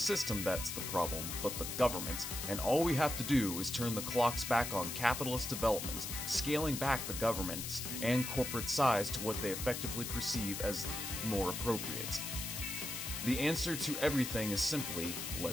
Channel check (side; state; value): left; noise; hiss, 5 dB below the sound